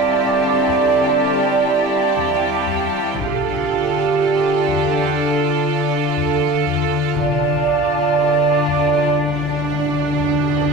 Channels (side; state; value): both; normal; correlation 0.38